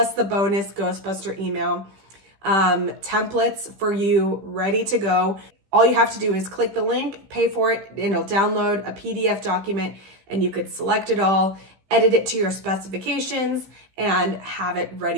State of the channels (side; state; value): left; late; 15 ms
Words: the bonus Ghostbuster email templates for you ready to go. All you have to do is click the link, pay for it, and it'll download a PDF document, and you could select it all, edit it to your specifications, and have it